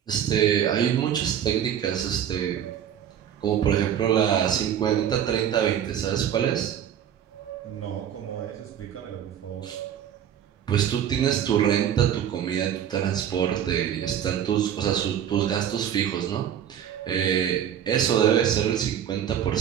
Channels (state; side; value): quieter; left; 9.6 dB